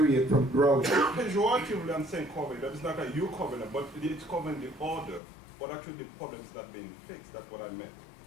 from growing. Pejoratively, I'm saying cover it up. It's not that you covering it, but it's covering the order. But actually, the problem is not being fixed. That's what I meant.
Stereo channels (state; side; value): drops out; right; at 5.2 s